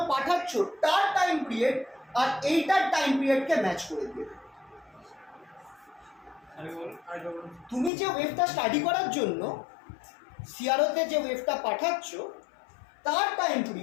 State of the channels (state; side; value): drops out; right; at 7.9 s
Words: পাঠাচ্ছ তার টাইম পিরিয়ড আর এইটার টাইম পিরিয়ডকে ম্যাচ করে দেবে। তুমি যে ওয়েভটা স্টাডি করার জন্য সিআরওতে যে ওয়েভটা পাঠাচ্ছ তার টাইম